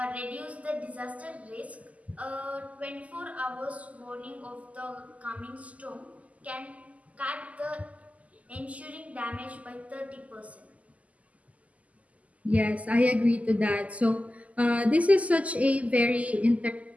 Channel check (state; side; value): late; left; 0.071 ms